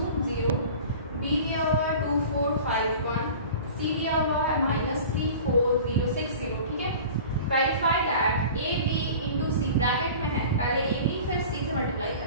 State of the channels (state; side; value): inverted; both; correlation -0.40